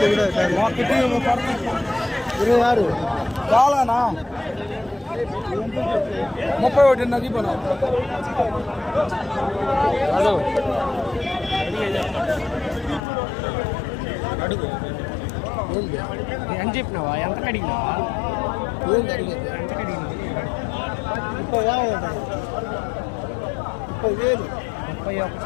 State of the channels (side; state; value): right; drops out; at 13.0 s